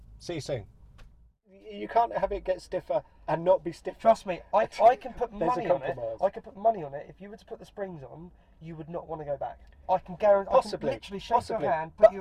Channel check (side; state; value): both; identical; correlation 1.00